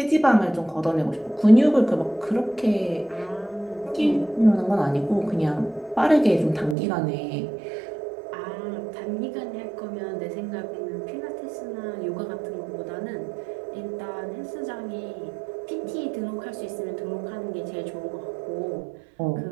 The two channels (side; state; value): left; drops out; at 6.8 s